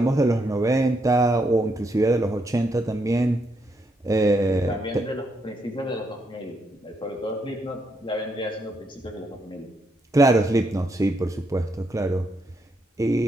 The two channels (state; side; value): normal; both; correlation 0.78